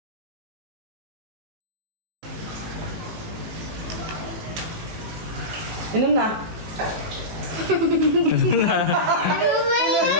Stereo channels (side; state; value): left; late; 18 ms